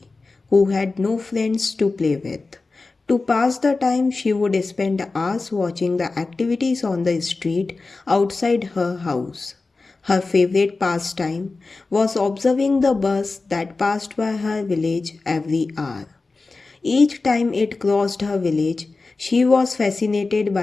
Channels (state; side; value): quieter; right; 3.7 dB